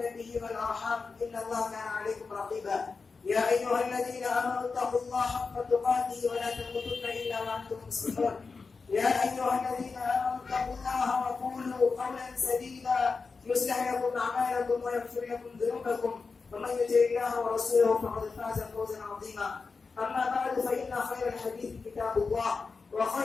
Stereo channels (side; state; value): right; quieter; 4.6 dB